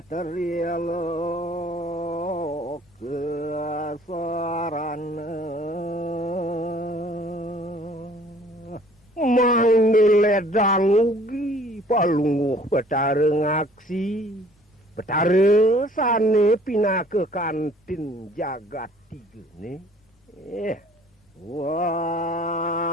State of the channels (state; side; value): normal; both; correlation 0.55